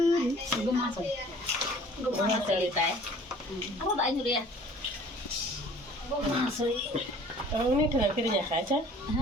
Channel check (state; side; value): normal; both; correlation 0.51